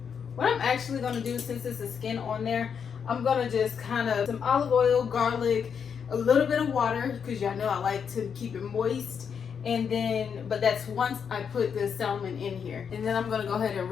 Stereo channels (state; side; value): quieter; right; 7.0 dB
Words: what I'm actually going to do, since it's a skin on there, I'm going to just kind of some olive oil, garlic, a little bit of water, because y'all know I like to keep it moist. And then, but that's once I put the salmon in here. And then I'm going to go ahead and